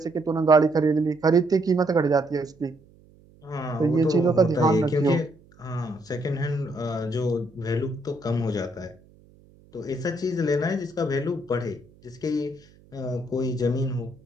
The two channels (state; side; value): noise; right; hum, 28 dB below the sound